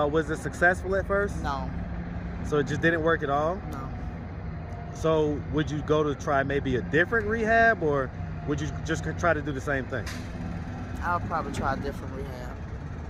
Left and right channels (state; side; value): identical; both; correlation 1.00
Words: it successful at first? No. So it just didn't work at all? No. So would you go to try maybe a different rehab, or would you just try to do the same thing? I'll probably try a different rehab.